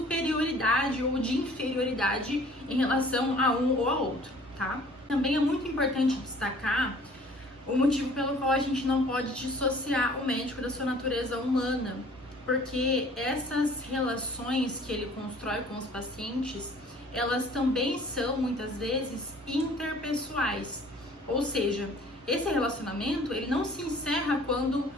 ou de inferioridade em relação a um ou a outro, tá? Também é muito importante destacar o motivo pelo qual a gente não pode dissociar o médico da sua natureza humana, porque essas relações que ele constrói com os pacientes, elas também são muitas vezes interpessoais, ou seja, esse relacionamento ele não se encerra quando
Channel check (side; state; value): both; normal; correlation 0.52